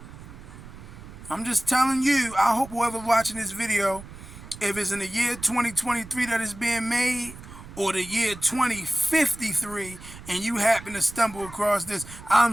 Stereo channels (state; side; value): noise; right; rumble, 16 dB below the sound